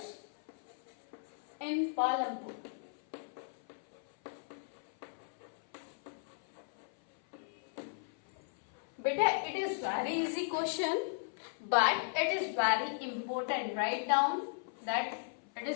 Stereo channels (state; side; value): silent; right; 54 dB below the other